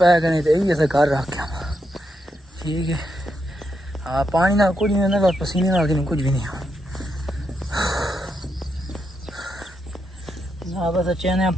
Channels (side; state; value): both; normal; correlation 0.82